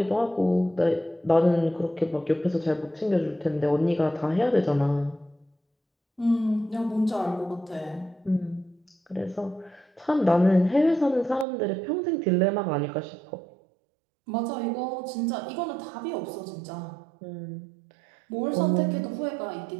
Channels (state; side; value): drops out; left; at 11.5 s